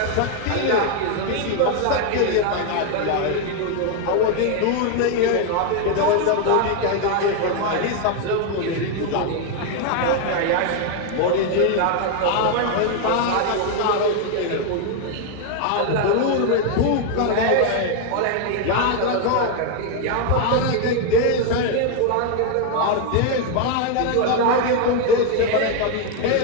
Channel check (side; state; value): both; different; correlation 0.01